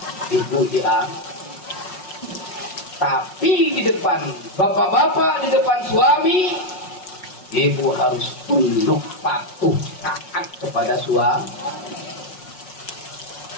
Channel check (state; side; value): late; right; 5.4 ms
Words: ibu diangkat. Tapi di depan bapak-bapak, di depan suami, ibu harus tunduk patuh taat kepada suami.